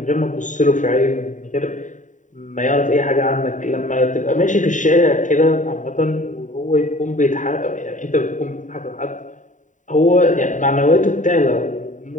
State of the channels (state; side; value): late; right; 0.36 ms